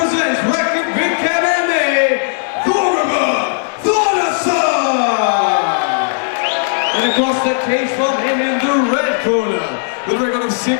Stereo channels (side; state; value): right; silent; 69 dB below the other